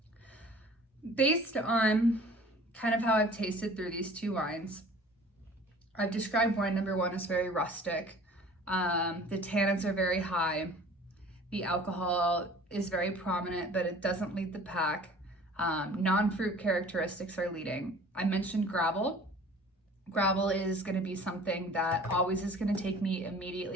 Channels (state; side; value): normal; both; correlation 0.47